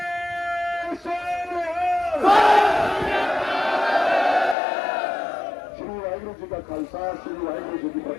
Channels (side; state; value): right; drops out; at 4.5 s